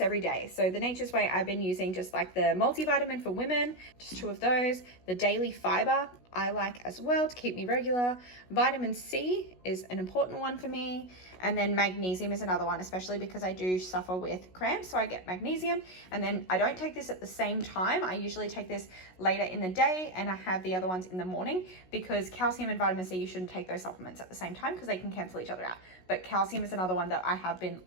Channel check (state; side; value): late; right; 16 ms